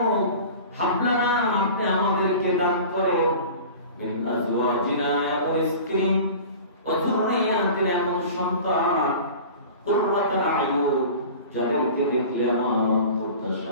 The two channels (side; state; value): both; inverted; correlation -0.39